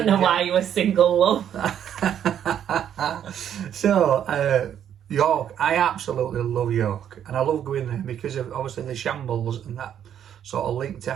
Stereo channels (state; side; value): quieter; left; 9.6 dB